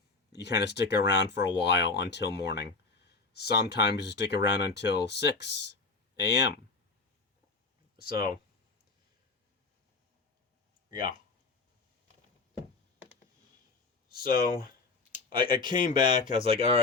you kind of stick around for a while until morning. Sometimes you stick around until 6 a.m. So, yeah. So, I came back. I was like, all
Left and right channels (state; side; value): quieter; right; 4.0 dB